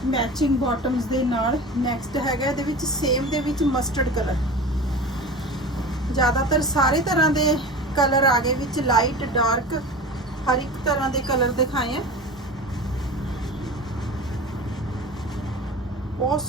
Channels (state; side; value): normal; both; correlation 0.34